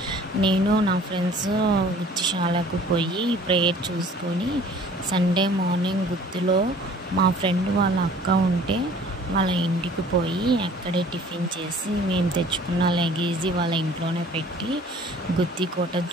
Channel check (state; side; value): normal; both; correlation 0.51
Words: నేను నా ఫ్రెండ్స్ గుత్తిశాలకు పోయి ప్రేయర్ చూసుకొని సండే మార్నింగ్ గుత్తిలో మా ఫ్రెండ్ వాళ్ళ అక్క ఉంటే వాళ్ళ ఇంటికి పోయి అక్కడే టిఫిన్ చేసి మేము తెచ్చుకున్న లగేజీ వాళ్ళ ఇంట్లోనే పెట్టి గుత్తికోట